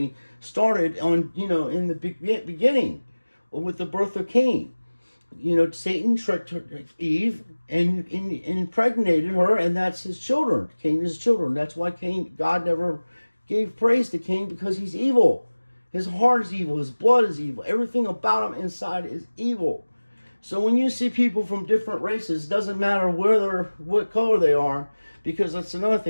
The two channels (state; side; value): inverted; both; correlation -1.00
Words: started on, you know, in the beginning with the birth of Cain. You know, Satan tricked Eve and impregnated her, and that's his children. Cain is his children. That's why God never gave praise to Cain, because he's evil. His heart is evil. His blood is evil. Everything about him inside is evil. So when you see people from different races, it doesn't matter what color they are, because that's another